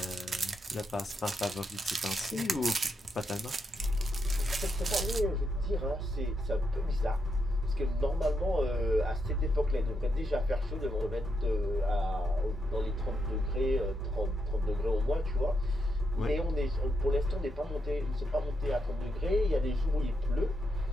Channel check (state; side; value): normal; both; correlation 0.82